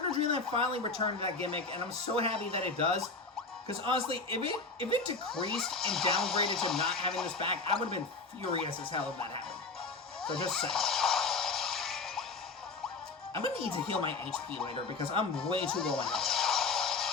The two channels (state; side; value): quieter; right; 4.1 dB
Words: to Dreamland finally returned to that gimmick, and I'm so happy that it does. Because honestly, if it decreased and downgraded to not having this back, I would have been furious as hell if that happened. So just saying. I'm gonna need to heal my HP later because I'm way too low on health.